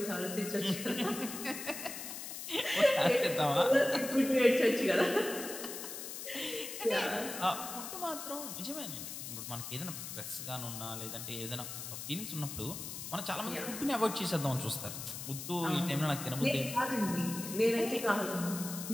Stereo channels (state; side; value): noise; left; hiss, 8 dB below the sound